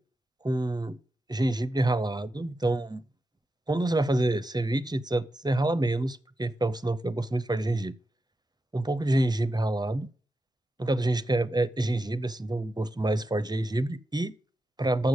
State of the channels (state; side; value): normal; both; correlation 0.88